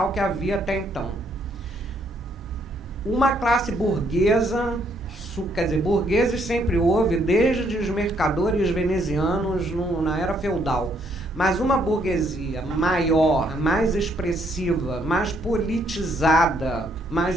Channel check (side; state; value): both; normal; correlation 0.70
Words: que havia até então. Uma classe burguesa, quer dizer, burgueses sempre houve, desde os mercadores venezianos na era feudal, mas uma burguesia maior, mais expressiva, mais politizada,